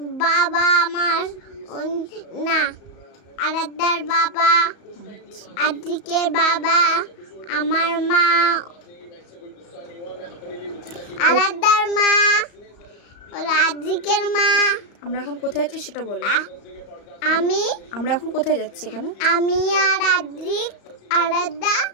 বাবা আমার না, আরাধ্যার বাবা, আদ্রিকের বাবা, আমার মা, আরাধ্যার মা, আদ্রিকের মা। আমরা এখন কোথায় যাচ্ছি সেটা বলো। আমরা এখন কোথায় যাচ্ছি? এখানে আমি আর আদ্রিক, আরাধ্যা,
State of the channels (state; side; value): late; right; 34 ms